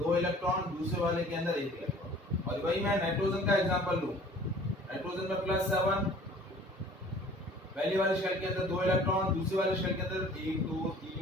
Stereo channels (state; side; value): normal; both; correlation 0.50